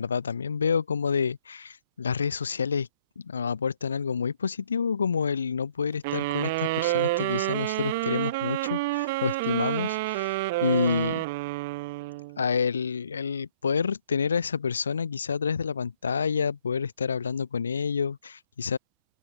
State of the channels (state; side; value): inverted; both; correlation -0.65